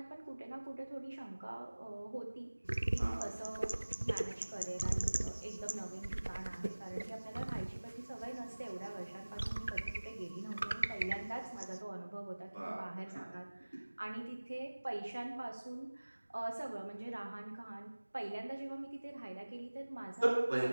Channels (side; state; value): both; inverted; correlation -1.00